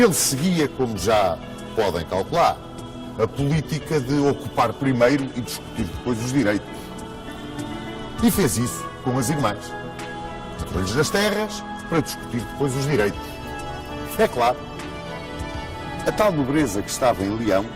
seguia, como já podem calcular, a política de ocupar primeiro e discutir depois os direitos. E fez isso com as irmãs. Entrou-lhes nas terras para discutir depois os direitos. É claro, a tal nobreza que estava em Leão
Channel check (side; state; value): both; identical; correlation 1.00